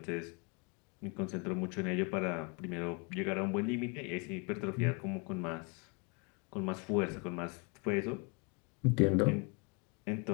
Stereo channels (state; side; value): quieter; right; 32.1 dB